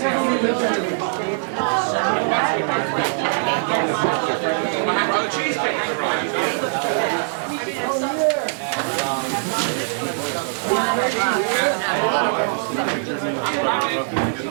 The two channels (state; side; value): silent; left; digital silence